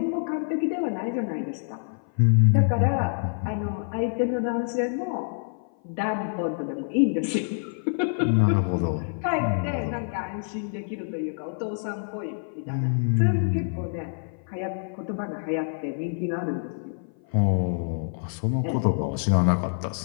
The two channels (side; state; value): right; silent; 56 dB below the other